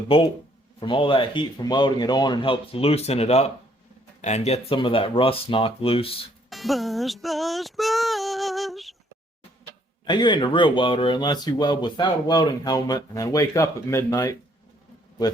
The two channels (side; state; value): both; normal; correlation 0.66